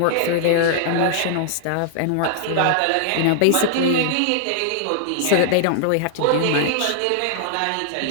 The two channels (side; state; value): both; different; correlation -0.01